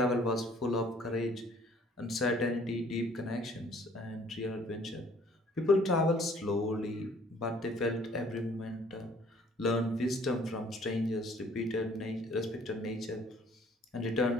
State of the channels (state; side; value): normal; both; correlation 0.57